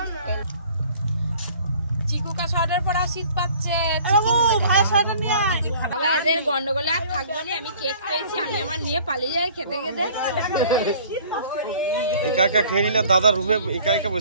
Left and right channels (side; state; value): both; inverted; correlation -0.51